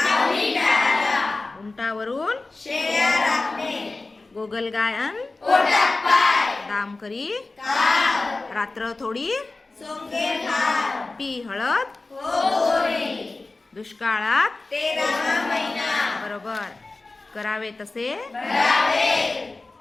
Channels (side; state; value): right; quieter; 3.4 dB